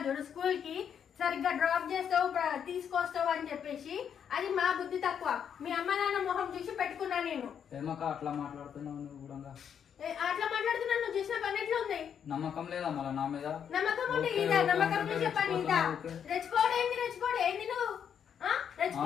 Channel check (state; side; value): quieter; right; 8.1 dB